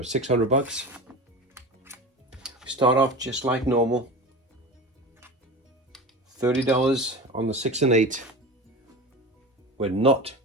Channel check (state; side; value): normal; both; correlation 0.30